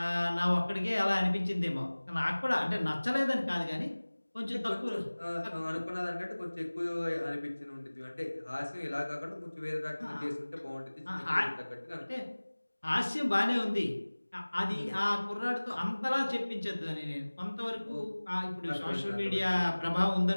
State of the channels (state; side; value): inverted; both; correlation -1.00